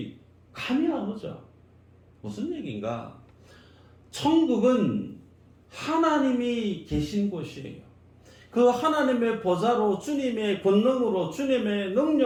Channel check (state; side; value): identical; both; correlation 1.00